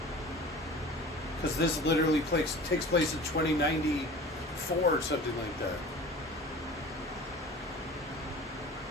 Because this literally takes place in 2094 or something like that.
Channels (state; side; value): normal; both; correlation 0.40